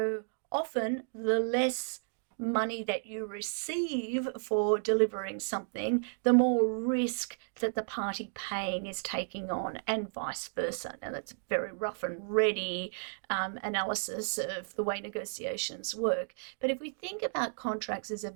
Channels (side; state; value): left; silent; digital silence